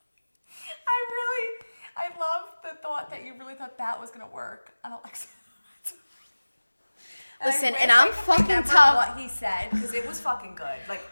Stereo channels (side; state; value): both; inverted; correlation -1.00